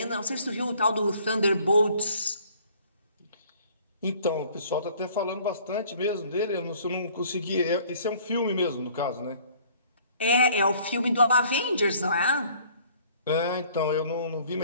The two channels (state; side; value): inverted; both; correlation -0.56